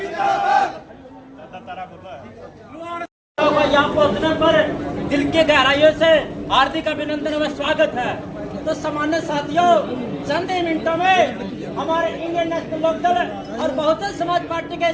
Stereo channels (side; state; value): both; identical; correlation 1.00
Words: यहाँ पहुँचने पर दिल की गहराइयों से हार्दिक अभिनंदन व स्वागत है। तो सामान्य साथियों, चंद ही मिनटों में हमारे इंडियन नेशनल लोकदल और बहुजन समाज पार्टी के